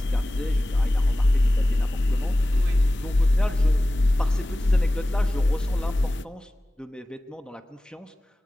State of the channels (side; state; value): both; normal; correlation 0.97